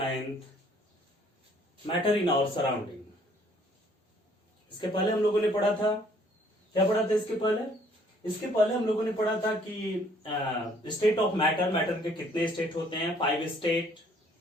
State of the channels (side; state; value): both; normal; correlation 0.61